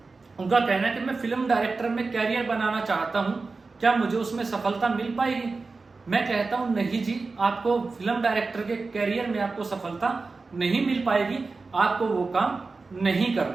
उनका कहना है कि मैं फिल्म डायरेक्टर में कैरियर बनाना चाहता हूं, क्या मुझे उसमें सफलता मिल पाएगी। मैं कहता हूं नहीं जी, आपको फिल्म डायरेक्टर के कैरियर में आपको सफलता नहीं मिल पाएगी, आपको वो काम नहीं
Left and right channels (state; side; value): quieter; left; 4.0 dB